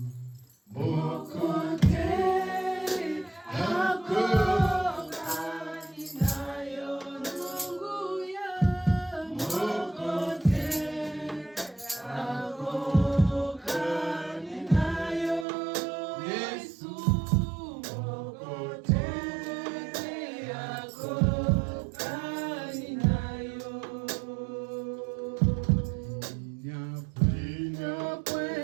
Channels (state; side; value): drops out; left; at 15.5 s